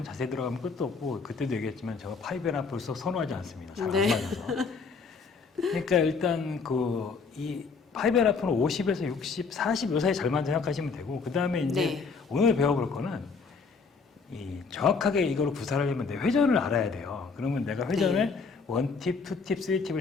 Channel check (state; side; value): quieter; right; 4.9 dB